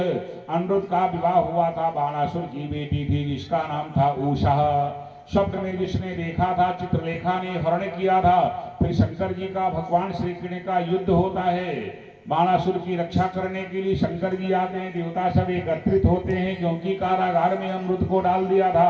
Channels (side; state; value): both; identical; correlation 1.00